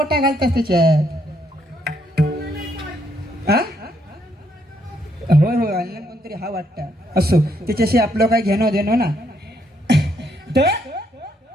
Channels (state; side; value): normal; both; correlation 0.73